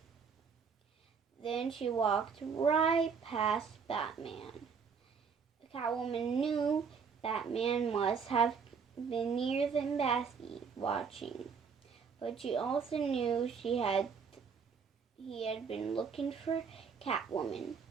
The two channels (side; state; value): left; quieter; 6.0 dB